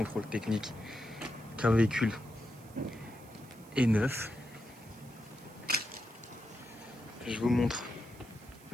technique. Qu'un véhicule est neuf. Je vous montre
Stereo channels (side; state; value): right; noise; hiss, 23 dB below the sound